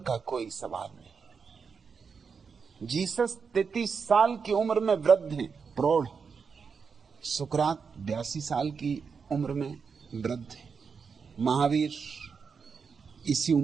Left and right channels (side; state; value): left; quieter; 5.7 dB